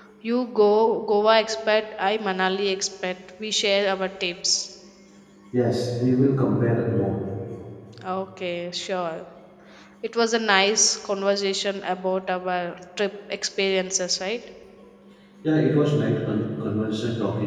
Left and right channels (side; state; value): both; identical; correlation 1.00